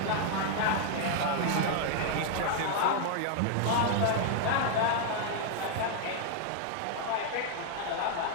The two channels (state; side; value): different; both; correlation 0.00